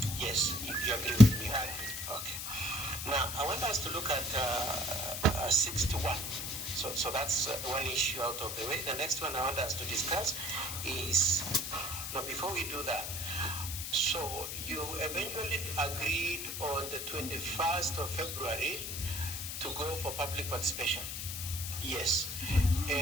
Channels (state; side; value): noise; left; hiss, 5 dB below the sound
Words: Yes, you agree with me? I agree. Okay. Now, I want us to look at 61. So that's one issue out of the way. The next one I want us to discuss is, now before we do that, so you eventually agreed on the 21st of February to go for public participation. Yes.